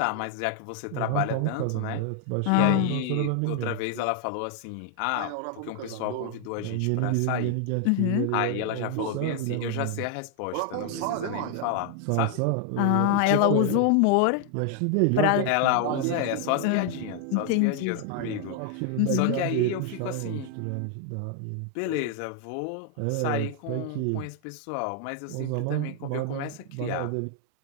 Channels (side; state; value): both; different; correlation 0.00